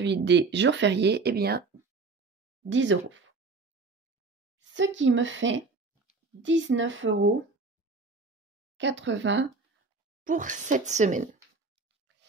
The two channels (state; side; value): quieter; left; 4.0 dB